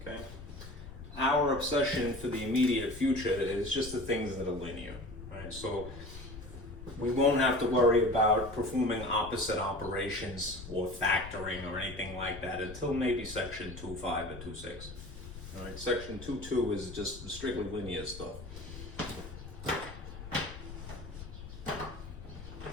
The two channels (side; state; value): left; noise; rumble, 12 dB below the sound